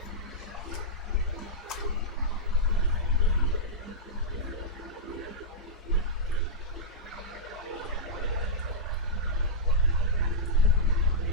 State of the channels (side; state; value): both; normal; correlation -0.11